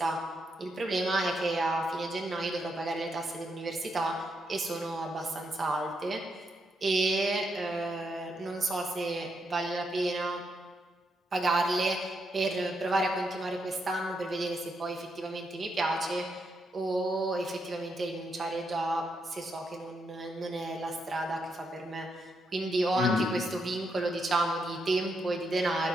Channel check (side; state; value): both; normal; correlation 0.80